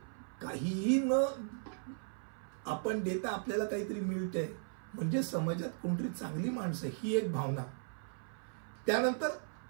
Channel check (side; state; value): left; silent; 53 dB below the other